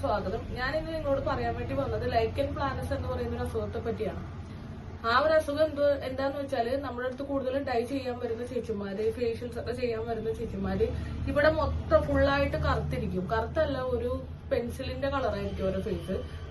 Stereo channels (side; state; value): both; identical; correlation 1.00